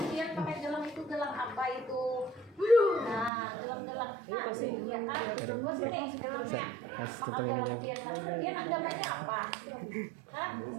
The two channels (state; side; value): drops out; left; at 3.3 s